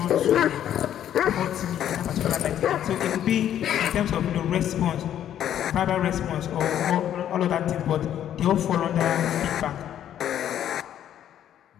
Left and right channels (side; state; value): right; quieter; 10.7 dB